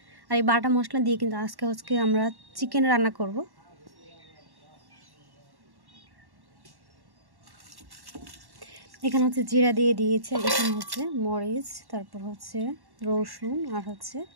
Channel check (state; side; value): late; left; 1.1 ms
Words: আর এই বাটা মশলা দিয়ে কিন্তু আজকে আমরা চিকেন রান্না করব। এখানে জিরা দিয়ে দিয়েছে, এখানে মরিচ, তারপর রসুন আর